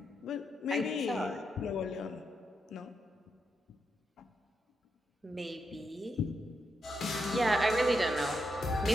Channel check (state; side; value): normal; both; correlation 0.83